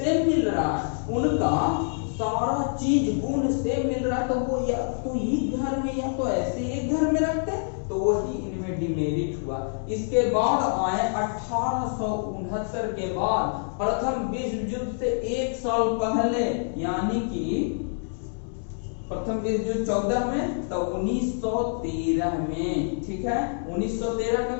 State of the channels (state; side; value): silent; right; digital silence